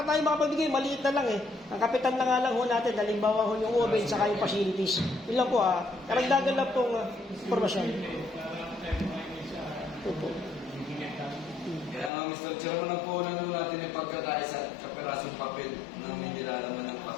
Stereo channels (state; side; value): drops out; right; at 12.1 s